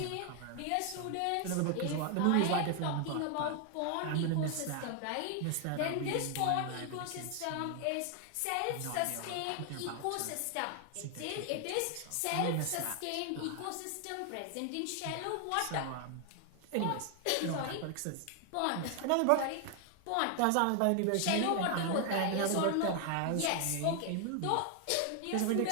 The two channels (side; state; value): both; different; correlation 0.00